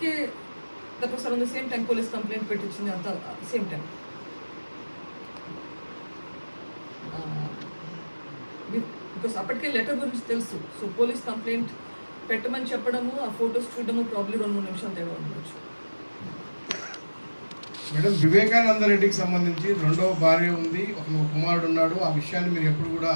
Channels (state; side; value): inverted; both; correlation -1.00